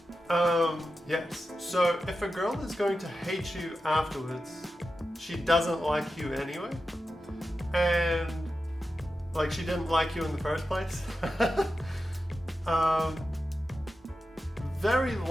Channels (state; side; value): normal; both; correlation 0.91